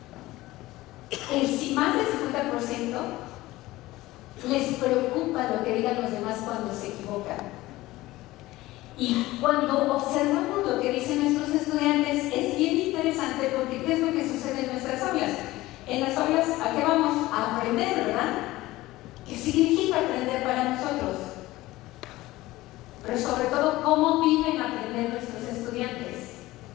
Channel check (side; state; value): right; quieter; 18.0 dB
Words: más del 50% les preocupa lo que digan los demás cuando se equivocan. Y cuando observamos lo que dicen nuestros estudiantes, es bien interesante porque ¿qué es lo que sucede en nuestras aulas? En las aulas, ¿a qué vamos? A aprender, ¿verdad? ¿Qué significa aprender para nosotros? Pero sobre todo, ¿cómo viven aprender nuestros estudiantes?